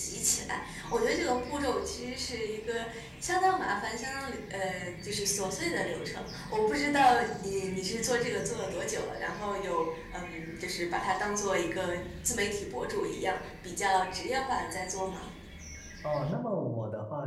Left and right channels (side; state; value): both; identical; correlation 1.00